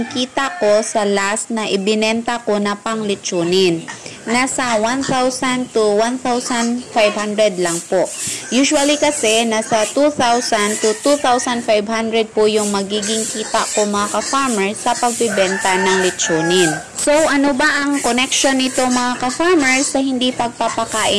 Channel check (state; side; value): identical; both; correlation 1.00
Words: kita ko sa last na ibinenta ko na panglitsunin. Nasa 1,000 to 1,500 lang po. Usually kasi nasa 2,000 to 2,500 po yung magiging kita ko mga ka-farmers sa pagbibenta ng litsunin. So ano ba ang connection nito mga ka-farmers sa hindi